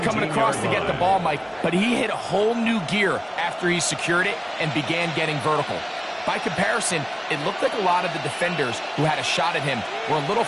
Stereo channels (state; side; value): identical; both; correlation 1.00